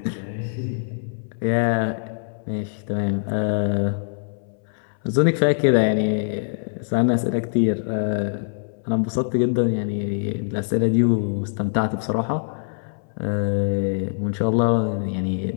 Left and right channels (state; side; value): silent; right; 63 dB below the other